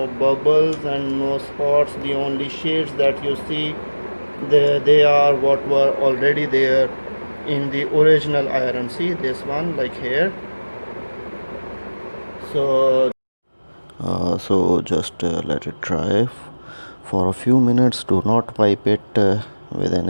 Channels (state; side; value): inverted; both; correlation -1.00